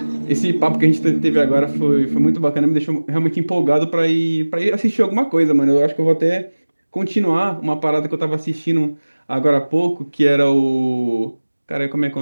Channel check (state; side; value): inverted; both; correlation -1.00